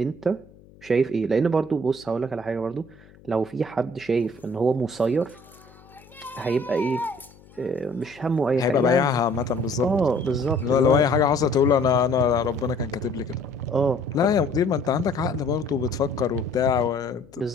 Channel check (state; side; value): noise; left; hum, 25 dB below the sound